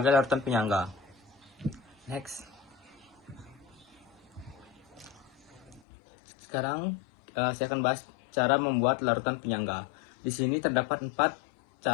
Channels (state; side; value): drops out; right; at 5.8 s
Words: larutan penyangga. Next. Sekarang saya akan bahas cara membuat larutan penyangga. Di sini terdapat 4